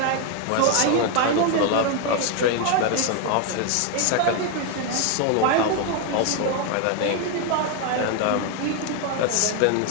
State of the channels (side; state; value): both; different; correlation 0.01